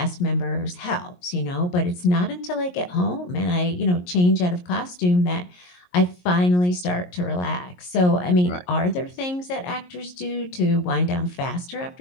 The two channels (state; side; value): late; right; 22 ms